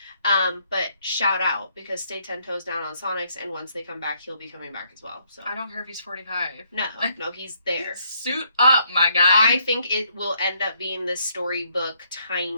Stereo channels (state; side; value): inverted; both; correlation -0.70